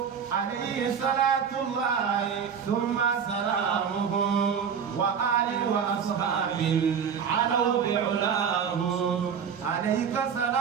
عليه صلاة الله ثم سلامه وآل وأصحاب علوا بعلاه عليك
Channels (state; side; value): quieter; left; 7.2 dB